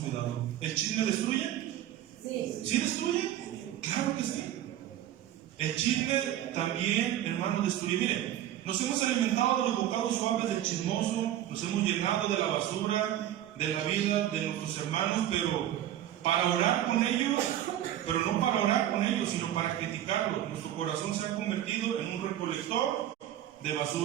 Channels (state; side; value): quieter; left; 12.2 dB